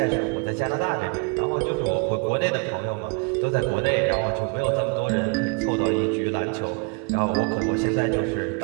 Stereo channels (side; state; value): left; quieter; 35.0 dB